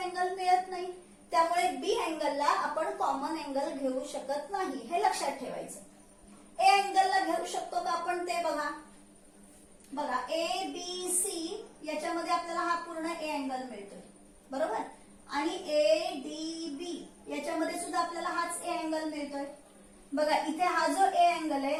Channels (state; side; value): identical; both; correlation 1.00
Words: मिळत नाही. त्यामुळे बी अँगलला आपण कॉमन अँगल घेऊ शकत नाही, हे लक्षात ठेवायचं. ए अँगलला घेऊ शकतो का आपण ते बघा. बघा ए बी सी याच्यामध्ये आपल्याला हा पूर्ण ए अँगल मिळतोय, बरोबर? आणि ए डी बी याच्यामध्ये सुद्धा आपल्याला हाच ए अँगल मिळतोय. बघा इथे हा जो ए अँगल आहे